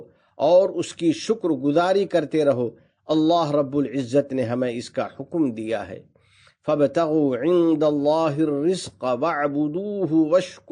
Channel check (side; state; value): both; identical; correlation 1.00